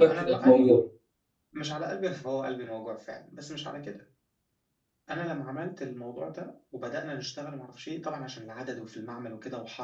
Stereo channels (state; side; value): identical; both; correlation 1.00